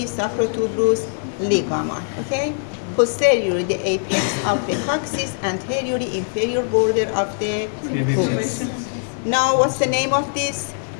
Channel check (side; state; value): right; silent; 65 dB below the other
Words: sacrotuberous ligament. Okay, posteriorly the apex of the coccyx, anteriorly inferior border of the pubis. Now, what's the name of this?